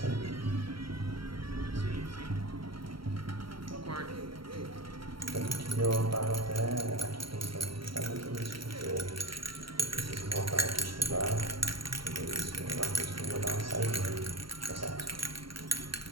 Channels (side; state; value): left; late; 0.74 ms